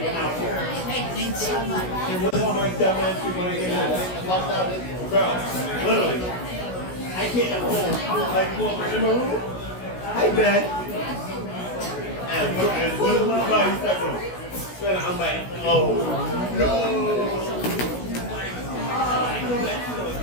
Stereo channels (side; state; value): right; late; 16 ms